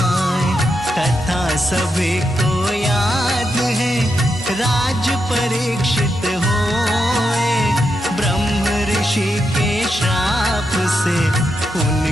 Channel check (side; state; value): both; normal; correlation 0.84